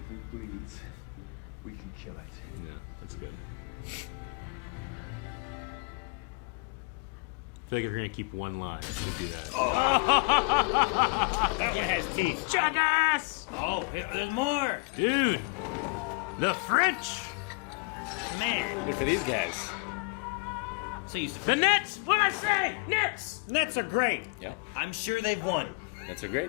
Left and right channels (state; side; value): quieter; right; 30.2 dB